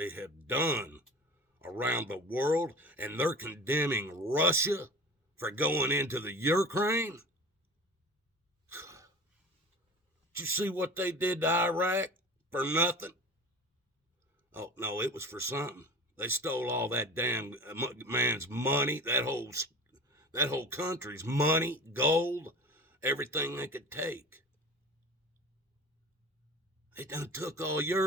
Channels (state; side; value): normal; both; correlation 0.36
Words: have done around the world, and they're condemning Russia for going into the Ukraine. Did you see what they did to Iraq for nothing? Oh, no, it was for something. They stole all that damn man's money, that whole country's money, gold, everything they could take. They done took all